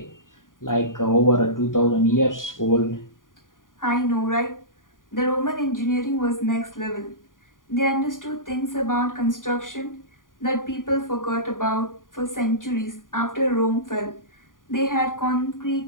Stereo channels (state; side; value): late; right; 0.89 ms